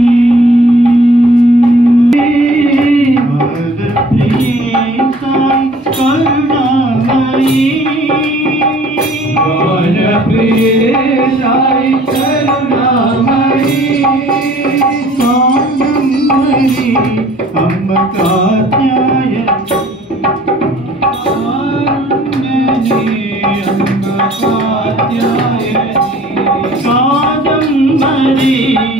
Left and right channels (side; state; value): both; normal; correlation 0.53